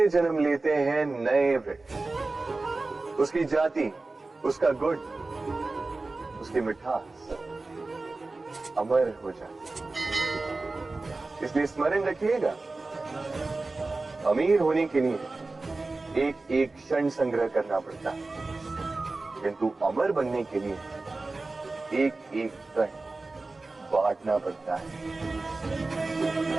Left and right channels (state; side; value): quieter; left; 3.4 dB